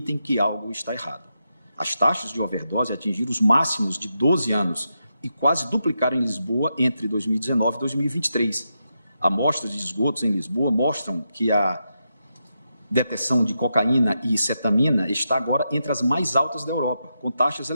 que algo está errado. As taxas de overdose atingiram os máximos de 12 anos e quase duplicaram em Lisboa entre 2019 e 2023. Amostras de esgotos em Lisboa mostram que a detecção de cocaína e cetamina está agora entre as mais altas da Europa, com taxas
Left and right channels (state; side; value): inverted; both; correlation -0.85